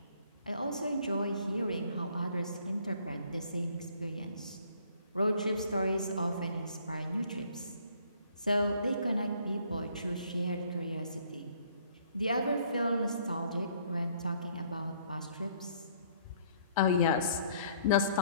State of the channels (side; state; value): both; inverted; correlation -0.61